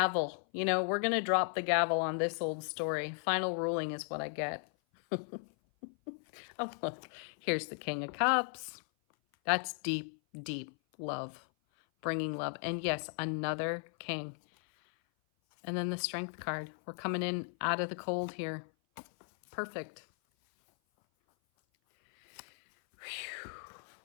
You know, we're going to drop the gavel on this old story. Final ruling is what I get. Oh, look. Here's the King of Cups. That's deep, deep love. Bringing love. And yes, another king. And then the Strength card. We're coming in out of the cold here. Perfect. Whew.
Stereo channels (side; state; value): right; silent; 54 dB below the other